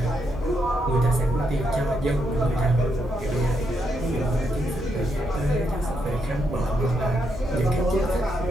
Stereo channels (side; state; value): both; normal; correlation 0.79